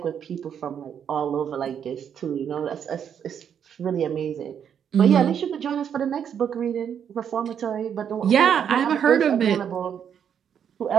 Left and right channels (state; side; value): quieter; left; 8.3 dB